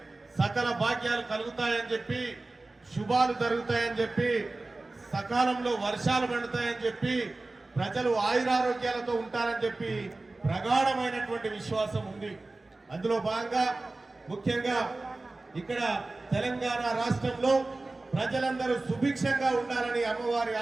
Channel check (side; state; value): left; quieter; 3.2 dB